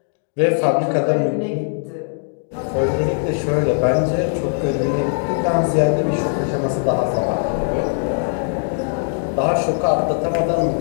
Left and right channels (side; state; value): right; silent; digital silence